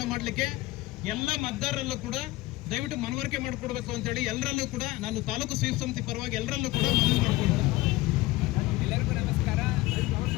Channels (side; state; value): right; quieter; 19.1 dB